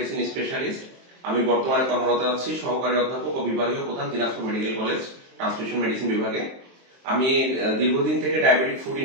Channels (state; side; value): late; left; 23 ms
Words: specialist. আমি বর্তমানে কর্মরত আছি সহকারী অধ্যাপক ও বিভাগীয় প্রধান, Dinajpur medical college transmission medicine বিভাগে। আমি দীর্ঘদিন থেকে ডায়াবেটিক ফুড